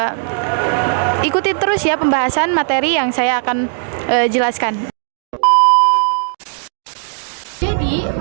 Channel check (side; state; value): left; silent; digital silence